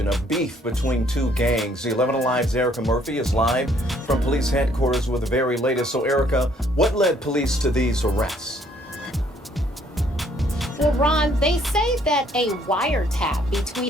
of beef between two gangs. The 11 Alive's Erica Murphy is live from police headquarters with the very latest. So, Erica, what led police to these arrests? Well, Ron, they say that a wiretap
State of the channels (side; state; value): both; normal; correlation 0.64